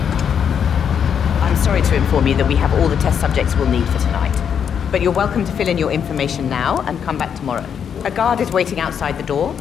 I'm sorry to inform you that we have all the test subjects we'll need for tonight. But you're welcome to fill in your information now and come back tomorrow. A guard is waiting outside the door.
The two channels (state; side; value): quieter; right; 7.8 dB